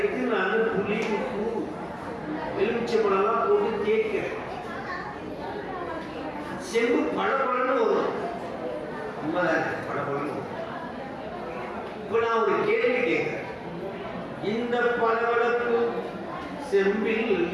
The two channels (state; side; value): identical; both; correlation 1.00